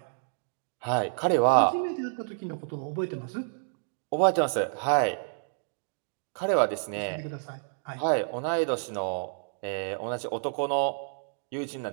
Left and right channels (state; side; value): silent; left; digital silence